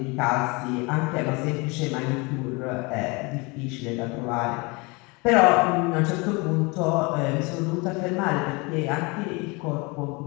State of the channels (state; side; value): quieter; right; 27.5 dB